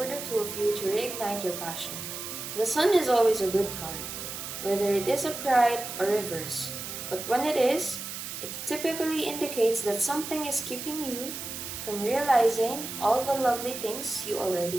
the two of you to reignite your passion. The Sun is always a good card, whether it is upright or reverse, but when it is, it typically indicates that something is keeping you from realizing all the lovely things you already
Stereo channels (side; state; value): right; noise; hiss, 7 dB below the sound